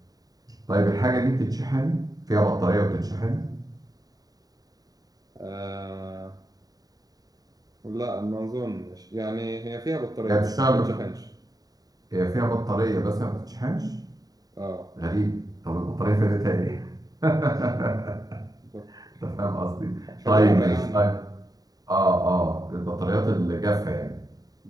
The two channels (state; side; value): late; left; 0.18 ms